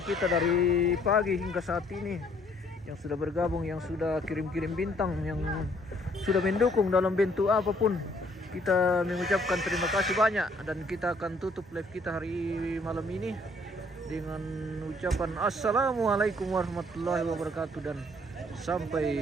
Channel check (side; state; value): both; normal; correlation 0.64